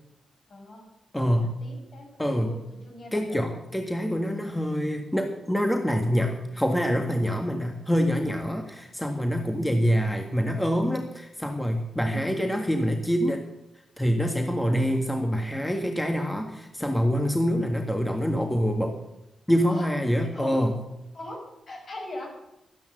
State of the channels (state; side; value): normal; both; correlation 0.93